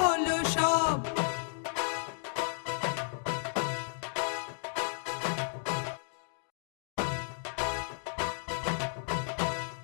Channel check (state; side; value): silent; right; digital silence